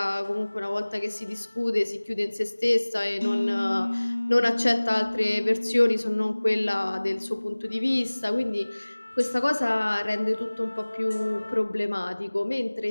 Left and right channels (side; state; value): both; inverted; correlation -1.00